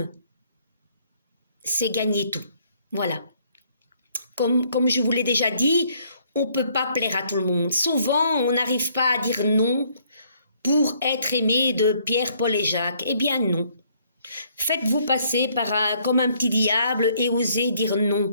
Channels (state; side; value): inverted; both; correlation -0.66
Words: c'est gagner tout. Voilà. Comme je vous l'ai déjà dit, on ne peut pas plaire à tout le monde. Souvent, on n'arrive pas à dire non pour être aimé de Pierre, Paul et Jacques. Eh bien non. Faites-vous passer comme un petit diable et osez dire